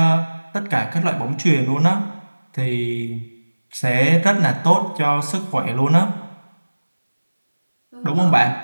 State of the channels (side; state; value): both; inverted; correlation -1.00